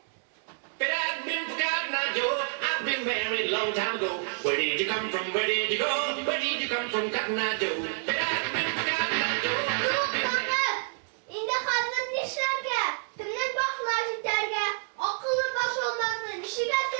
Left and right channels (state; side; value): silent; left; 59 dB below the other